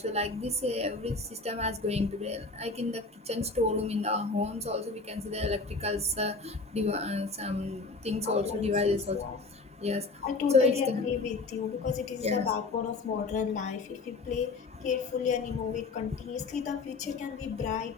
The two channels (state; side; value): quieter; right; 3.8 dB